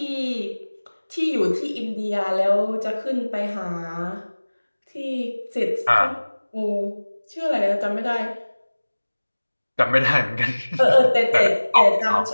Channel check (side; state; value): both; inverted; correlation -1.00